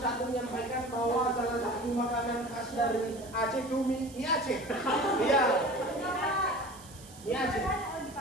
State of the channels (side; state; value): right; noise; hiss, 19 dB below the sound